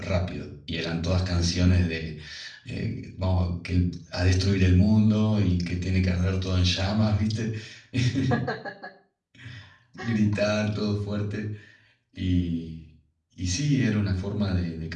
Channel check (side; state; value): both; identical; correlation 1.00